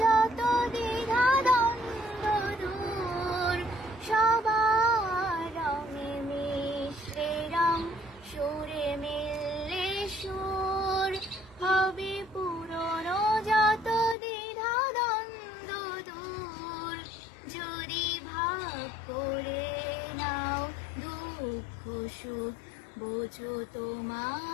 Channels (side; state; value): right; drops out; at 14.2 s